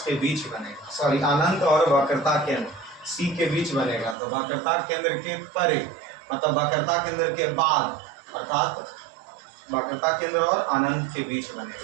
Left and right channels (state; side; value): drops out; left; at 4.2 s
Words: के बीच बनेगा, सॉरी अनंत और वक्रता केंद्र C के बीच बनेगा। तो वक्रता केंद्र के परे मतलब वक्रता केंद्र के बाद, अर्थात वक्रता केंद्र और अनंत के बीच